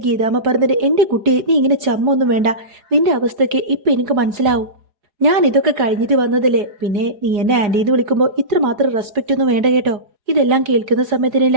ഗീതാമ്മ പറഞ്ഞിട്ട്, എന്റെ കുട്ടിയെ, നീ ഇങ്ങനെ ചമ്മൊന്നും വേണ്ട. നിന്റെ അവസ്ഥയ്ക്ക് ഇപ്പൊ എനിക്ക് മനസ്സിലാവും. ഞാൻ ഇതൊക്കെ കഴിഞ്ഞിട്ട് വന്നതല്ലേ. പിന്നെ നീ എന്നെ ആന്റിന്ന് വിളിക്കുമ്പോൾ ഇത്രമാത്രം റെസ്പെക്റ്റ് ഒന്നും വേണ്ട കേട്ടോ. ഇതെല്ലാം കേൾക്കുന്ന സമയത്തിന്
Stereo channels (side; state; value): left; late; 4.8 ms